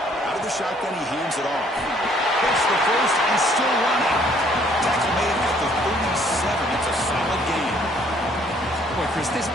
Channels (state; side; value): normal; both; correlation 0.62